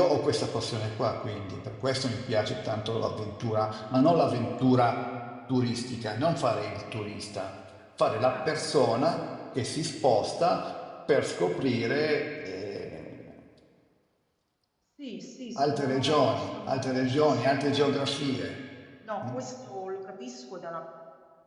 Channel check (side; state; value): both; identical; correlation 1.00